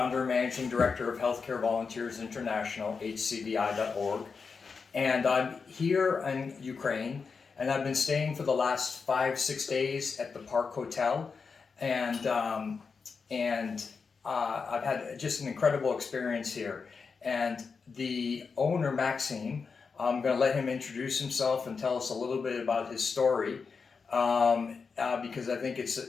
and managing director of Healthcare Volunteers International, hcvi.org. And I'm here in Ukraine, and I've been staying for the last 5-6 days at the Park Hotel, and I've had just an incredible experience here. And the owner, Maxime, I'm going to let him introduce himself and tell us a little bit about his story, because I think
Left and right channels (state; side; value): quieter; right; 5.2 dB